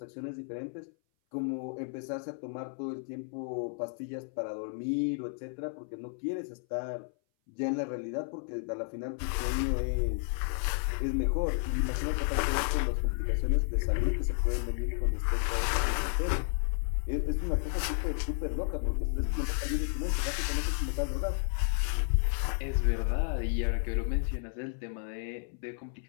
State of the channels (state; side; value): silent; right; 56 dB below the other